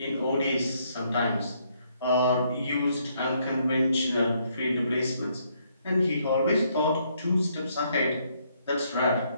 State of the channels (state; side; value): inverted; both; correlation -0.72